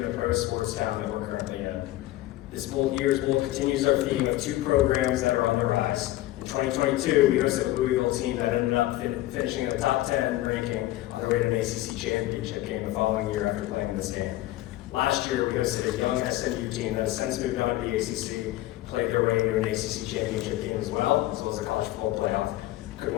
the pro sports town that we're currently in. This year's bowl continues our theme of two programs that are on the rise. In 2022, we hosted a Louisville team that ended up finishing in the top 10 ranking on their way to an ACC championship game the following year after playing this game. Last year, we hosted a young SMU team that has since moved on to the ACC, played their way into an ACC championship game as well as the college football playoff. Could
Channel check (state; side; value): quieter; right; 16.0 dB